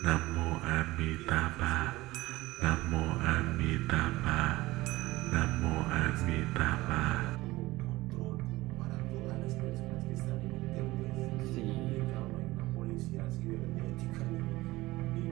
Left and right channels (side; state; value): left; quieter; 19.0 dB